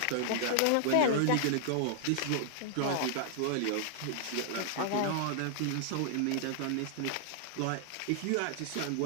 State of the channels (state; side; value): different; both; correlation -0.01